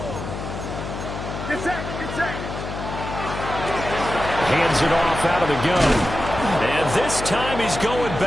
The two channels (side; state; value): left; noise; hum, 7 dB below the sound